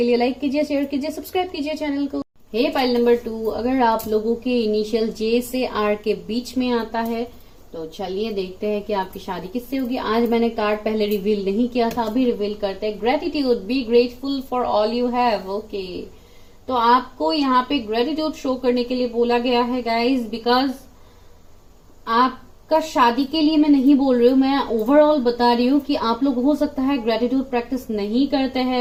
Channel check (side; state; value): both; identical; correlation 1.00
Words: लिए लाइक कीजिए, शेयर कीजिए, सब्सक्राइब कीजिए चैनल को। हे पाइल नंबर 2, अगर आप लोगों के इनिशियल जे से आर के बीच में आता है तो चलिए देखते हैं कि आपकी शादी किससे होगी। आज मैंने कार्ड पहले रिवील नहीं किया था, अभी रिवील करते हैं। Gratitude, be grateful for all you have. Okay, तो आपको यहाँ पे ग्रेटिट्यूड शो करने के लिए बोला गया है गाइज, बिकॉज आपका शादी के लिए मैं नहीं बोल रही हूँ, मैं ओवरऑल बता रही हूँ कि आप लोग हो सकता है ग्रेटिट्यूड प्रैक्टिस नहीं करते